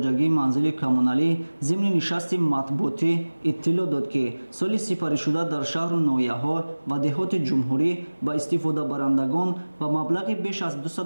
манзили коммуналӣ зимни нишасти матбуотӣ иттилоъ дод ки соли сипаришуда дар шаҳру ноҳияҳо ва деҳоти ҷумҳурӣ ба истифодабарандагон ба маблағи беш аз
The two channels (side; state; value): both; inverted; correlation -1.00